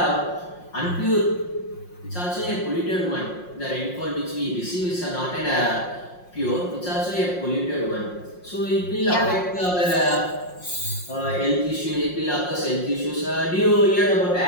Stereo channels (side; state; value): right; late; 5.6 ms